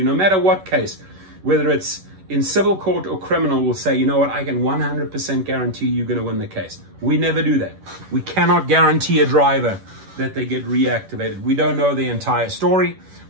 no matter what case, whether it's in civil court or criminal, will say, you know what, I can 100% guarantee you're going to win the case. We never do that. We cannot guarantee a driver that they get reactivated. We don't know the entire story.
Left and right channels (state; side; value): late; left; 11 ms